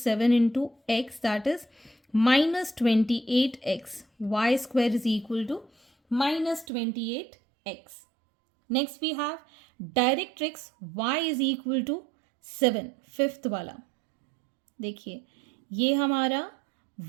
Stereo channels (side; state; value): left; drops out; at 6.7 s